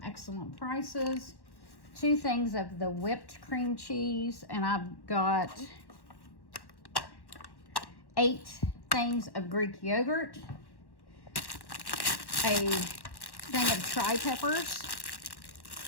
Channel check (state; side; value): late; right; 1.1 ms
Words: excellent prices. 2 things of the whipped cream cheese, and I've got 8 things of Greek yogurt, a thing of tri-peppers,